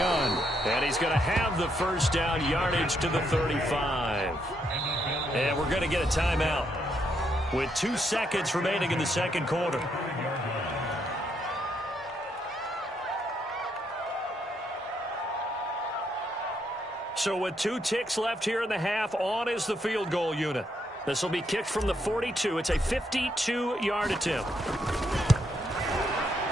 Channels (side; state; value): both; normal; correlation 0.76